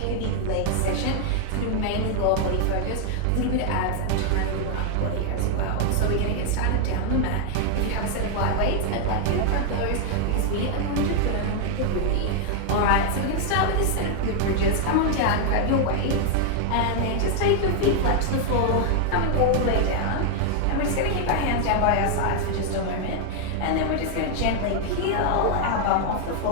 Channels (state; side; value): different; both; correlation 0.00